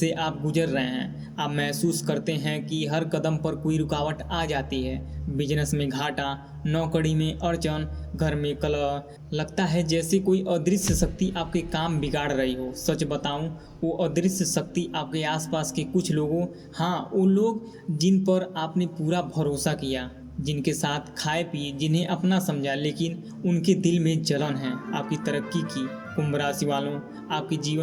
आप गुजर रहे हैं। आप महसूस करते हैं कि हर कदम पर कोई रुकावट आ जाती है। बिजनेस में घाटा, नौकरी में अड़चन, घर में कलह, लगता है जैसे कोई अदृश्य शक्ति आपके काम बिगाड़ रही हो। सच बताऊं, वो अदृश्य शक्ति आपके आसपास के कुछ लोगों, हाँ वो लोग जिन पर आपने पूरा भरोसा किया, जिनके साथ खाए पिए, जिन्हें अपना समझा, लेकिन उनके दिल में जलन है आपकी तरक्की की। कुंभ राशि वालों, आपके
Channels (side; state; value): both; identical; correlation 1.00